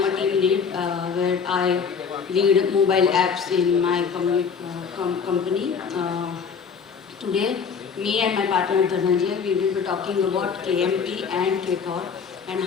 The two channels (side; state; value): right; quieter; 6.2 dB